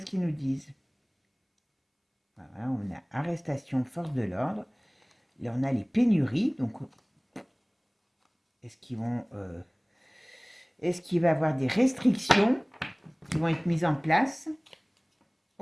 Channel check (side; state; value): both; identical; correlation 1.00